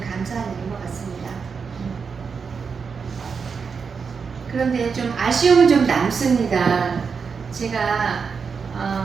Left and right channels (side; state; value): left; quieter; 5.7 dB